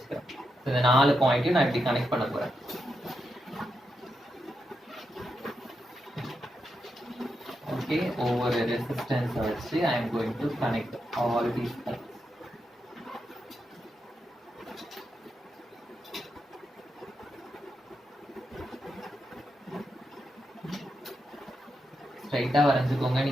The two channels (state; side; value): normal; both; correlation 0.85